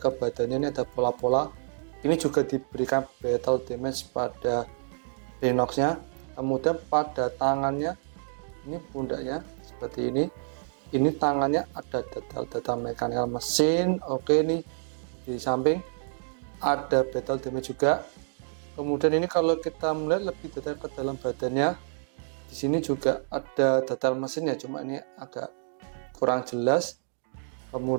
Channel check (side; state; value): left; silent; digital silence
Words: badannya ini ada pola-pola. Ini juga diberikan battle damage pada Rhinox-nya. Kemudian pada tangannya, ini pundaknya seperti ini. Ini tangannya ada detail-detail mekanikal mesin. Oke, ini di samping ada battle damage juga. Kemudian ini kalau kita melihat lebih detail ke dalam badannya, di sini juga ada detail mesin ya, cuma ini agak kurang jelas.